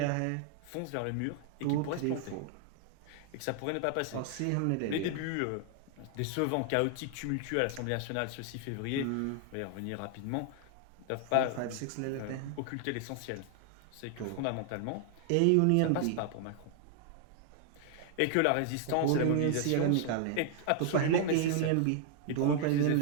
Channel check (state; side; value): different; both; correlation 0.00